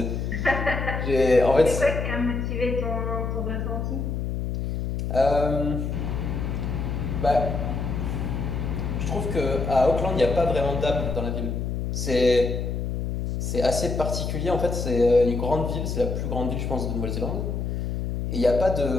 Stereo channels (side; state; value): left; noise; hum, 2 dB below the sound